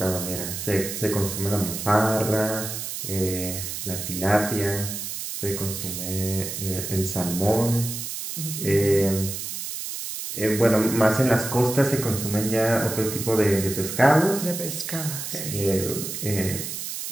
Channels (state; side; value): noise; right; hiss, 6 dB below the sound